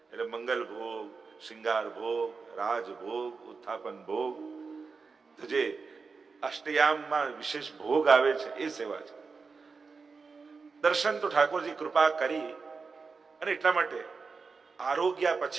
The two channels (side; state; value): left; quieter; 4.8 dB